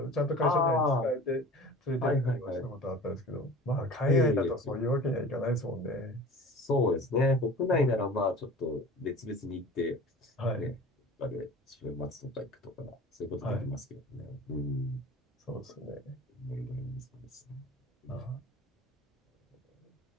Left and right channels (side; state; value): both; normal; correlation 0.40